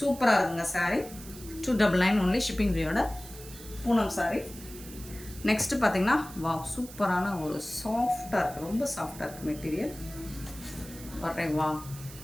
இருக்குங்க சாரீ. 299 ஒன்லி ஷிப்பிங் ஃப்ரீயோட பூனம் சாரீ. நெக்ஸ்ட்டு பார்த்தீங்கன்னா வா, சூப்பரான ஒரு சாஃப்டாக இருக்குது, ரொம்ப சாஃப்டாக இருக்குது மெட்டீரியல். வரேன் வா,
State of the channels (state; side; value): noise; right; hiss, 16 dB below the sound